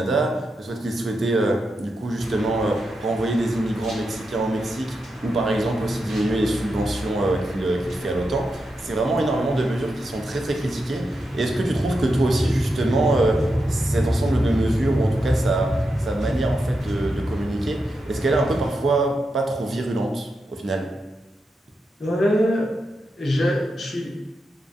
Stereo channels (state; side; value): normal; both; correlation 0.87